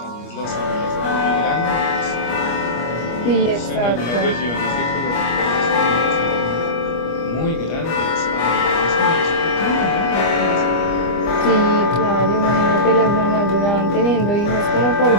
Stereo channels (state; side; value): late; right; 25 ms